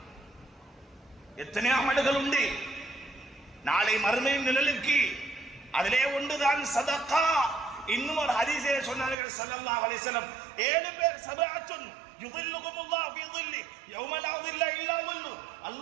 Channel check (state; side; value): drops out; left; at 9.2 s